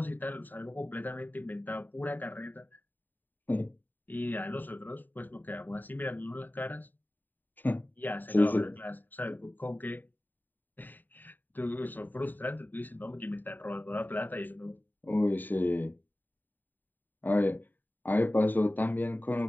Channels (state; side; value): late; right; 0.089 ms